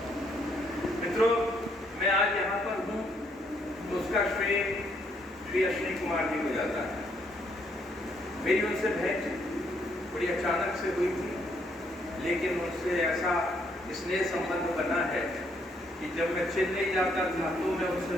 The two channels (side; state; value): both; normal; correlation 0.71